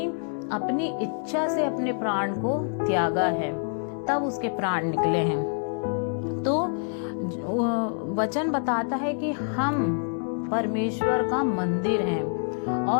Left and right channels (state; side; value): silent; right; digital silence